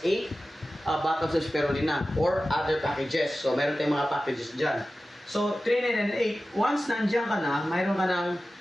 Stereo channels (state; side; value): normal; both; correlation 0.95